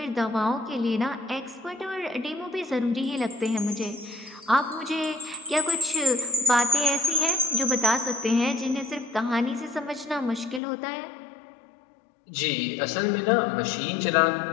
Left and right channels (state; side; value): drops out; right; at 10.6 s